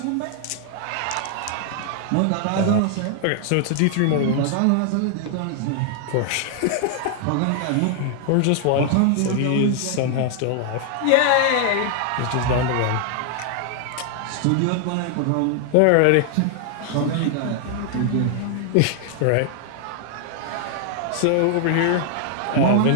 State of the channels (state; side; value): different; both; correlation 0.00